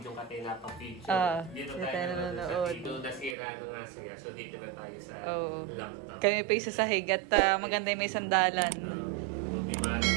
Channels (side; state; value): left; drops out; at 3.4 s